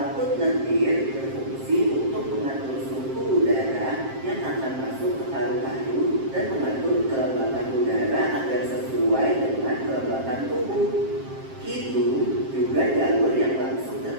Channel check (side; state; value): left; late; 7.5 ms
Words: lendir berfungsi untuk mengatur suhu udara yang akan masuk ke paru-paru dan mengatur kelembapan udara agar sesuai dengan kelembapan tubuh. Hidung juga jalur yang langsung